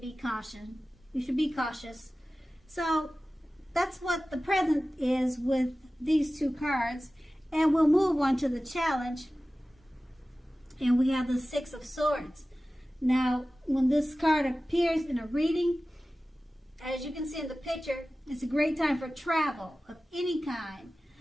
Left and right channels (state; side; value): normal; both; correlation 0.96